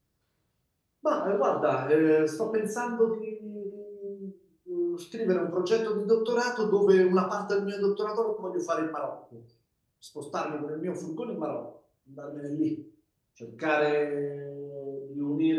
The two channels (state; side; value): identical; both; correlation 1.00